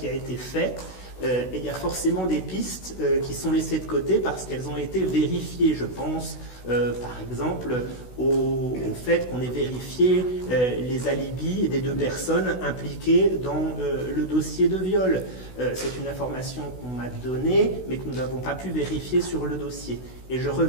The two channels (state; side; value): late; right; 16 ms